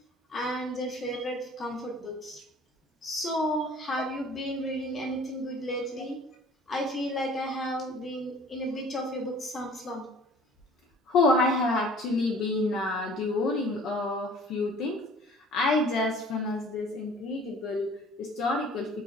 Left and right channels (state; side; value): normal; both; correlation 0.49